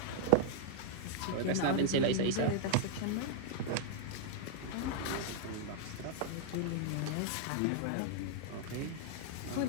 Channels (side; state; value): both; different; correlation -0.01